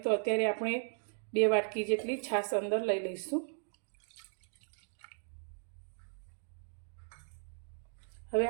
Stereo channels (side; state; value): left; silent; digital silence